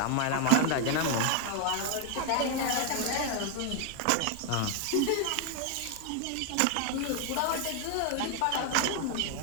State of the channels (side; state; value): both; different; correlation 0.01